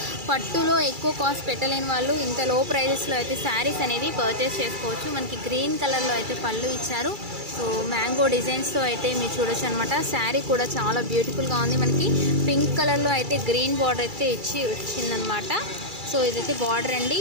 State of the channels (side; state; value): left; late; 2.3 ms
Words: పట్టులో ఎక్కువ కాస్ట్ పెట్టలేని వాళ్ళు ఇంత లో ప్రైజెస్లో అయితే శారీస్ అనేది పర్చేస్ చేసుకోవచ్చు. మనకి గ్రీన్ కలర్లో అయితే పళ్ళు ఇచ్చారు. సో మ్యాంగో డిజైన్స్తో అయితే మీరు చూడొచ్చు అనమాట. శారీ కూడా చాలా బ్యూటిఫుల్గా ఉంది. మనకి పింక్ కలర్లో అయితే గ్రీన్ బార్డర్ అయితే వచ్చిందనమాట. సో ఇదైతే బార్డర్ అండి.